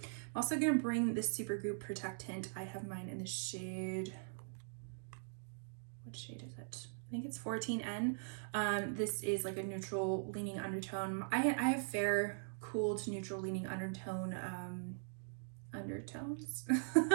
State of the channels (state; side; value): silent; left; digital silence